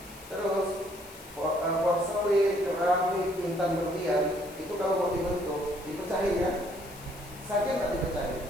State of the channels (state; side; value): noise; left; hiss, 19 dB below the sound